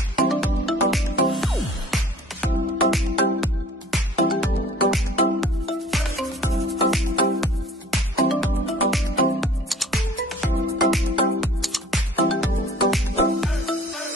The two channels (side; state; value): both; normal; correlation 0.51